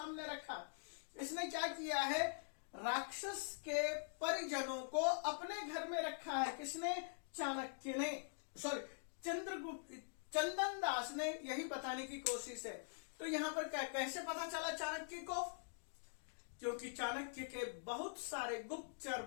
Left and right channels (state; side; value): silent; right; digital silence